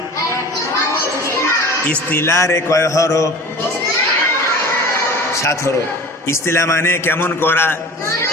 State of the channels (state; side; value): normal; both; correlation 0.39